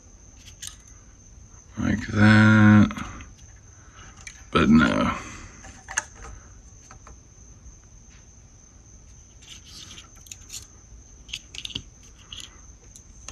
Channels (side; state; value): both; identical; correlation 1.00